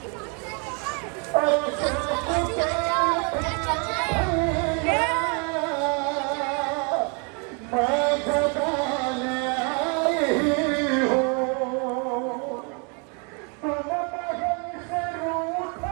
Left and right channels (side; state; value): left; quieter; 35.9 dB